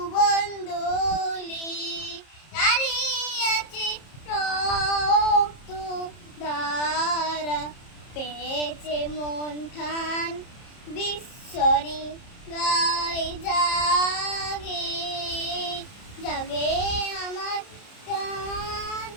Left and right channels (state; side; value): late; right; 30 ms